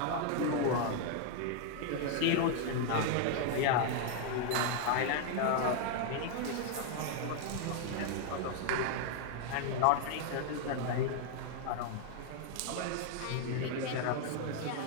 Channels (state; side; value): different; both; correlation 0.00